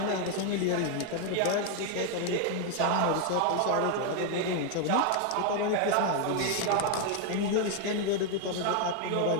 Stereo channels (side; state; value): both; different; correlation 0.01